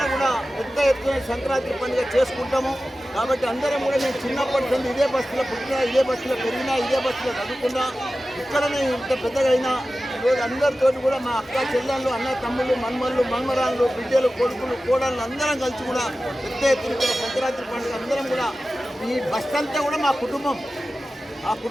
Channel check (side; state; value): both; normal; correlation 0.95